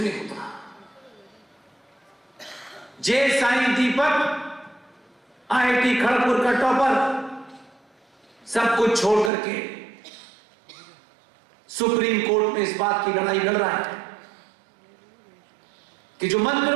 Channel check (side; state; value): left; drops out; at 9.3 s